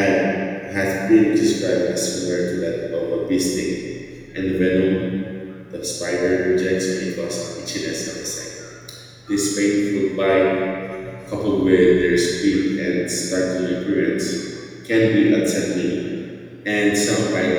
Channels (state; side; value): identical; both; correlation 1.00